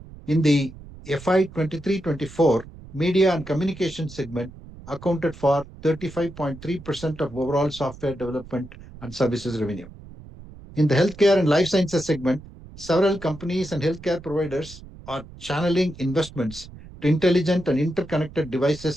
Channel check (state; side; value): noise; right; rumble, 17 dB below the sound